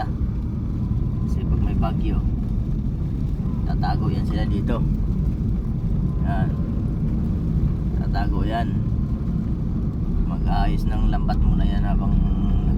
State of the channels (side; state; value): both; identical; correlation 1.00